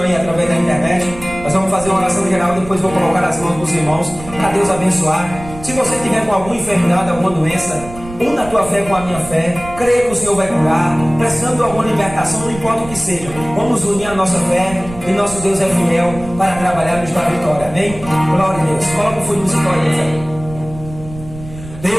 aí através da internet. Nós vamos fazer uma oração geral, depois vou colocar as mãos dos irmãos, para Deus abençoar. Se você tiver com alguma enfermidade, alguma doença, una a tua fé com a minha fé, creia que o Senhor vai curar, precisando de alguma libertação, não importa o que seja, vamos unir a nossa fé, e nosso Deus é fiel para trabalhar nos dar vitória, amém? Glória a Deus. Coloca o fundo musical aí,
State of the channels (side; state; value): right; noise; rumble, 14 dB below the sound